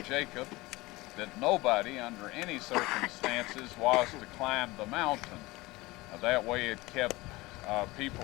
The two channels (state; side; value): quieter; right; 21.0 dB